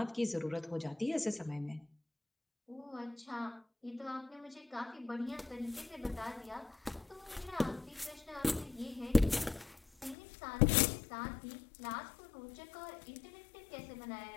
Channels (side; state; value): right; drops out; at 10.2 s